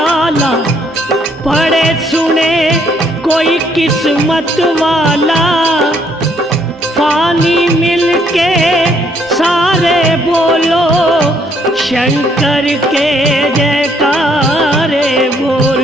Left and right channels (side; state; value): both; normal; correlation 0.68